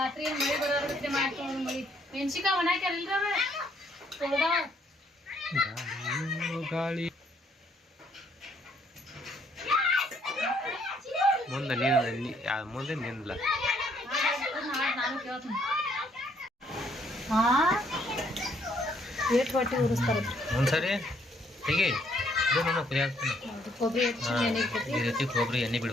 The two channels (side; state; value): both; normal; correlation 0.68